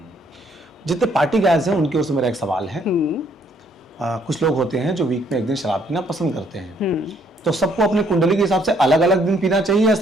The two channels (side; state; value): both; normal; correlation 0.66